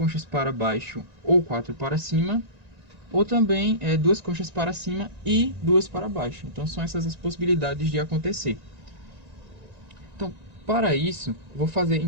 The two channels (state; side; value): late; left; 1.9 ms